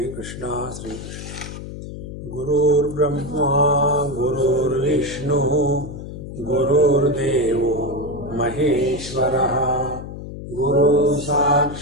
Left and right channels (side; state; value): left; noise; hum, 10 dB below the sound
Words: Krishna, Sri Krishna. Gurur Brahma, Gurur Vishnu, Gurur Devo, Maheshwaraha, Guru